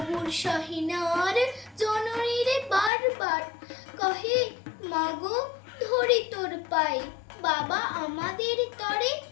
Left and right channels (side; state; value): right; drops out; at 2.9 s